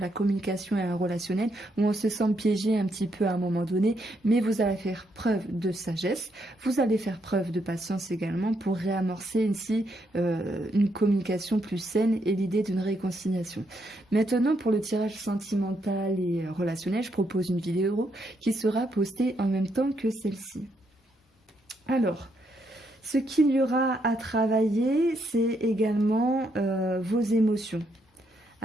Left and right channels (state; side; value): normal; both; correlation 0.77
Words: communication et un relationnel où on se sent piégé un petit peu à un moment donné, mais vous allez faire preuve de sagesse, vous allez faire preuve de patience également pour réamorcer ici une communication plus saine et l'idée d'une réconciliation. Maintenant, pour le tirage sentimental et relationnel, je propose une vidéo qui sera postée en même temps que celle-ci. Alors, ce qu'il y aura à travailler, c'est également vos émotions.